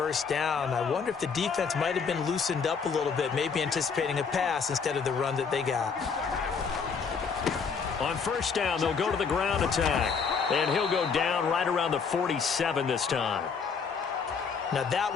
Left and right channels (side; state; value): right; quieter; 5.8 dB